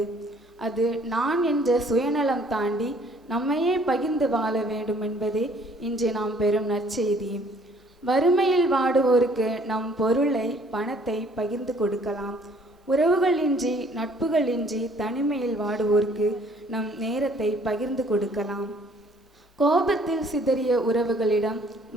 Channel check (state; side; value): normal; both; correlation 0.59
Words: அது நான் என்ற சுயநலம் தாண்டி நம்மையே பகிர்ந்து வாழ வேண்டும் என்பதே இன்று நாம் பெறும் நற்செய்தி. வறுமையில் வாடுவோருக்கு நம் பொருளை, பணத்தை பகிர்ந்து கொடுக்கலாம். உறவுகளின்றி நட்புகளின்றி தனிமையில் வாடுவோருக்கு நம் நேரத்தை பகிர்ந்து கொடுக்கலாம். கோபத்தில் சிதறிய உறவுகளிடம்